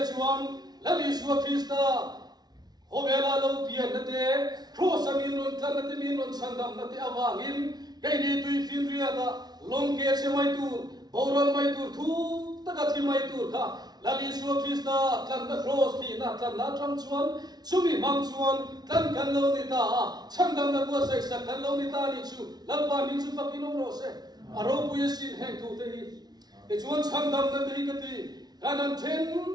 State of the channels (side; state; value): left; late; 0.19 ms